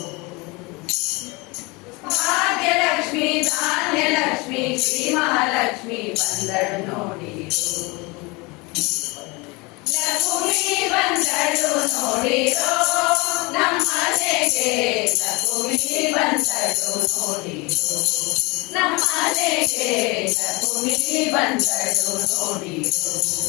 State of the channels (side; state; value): right; quieter; 26.1 dB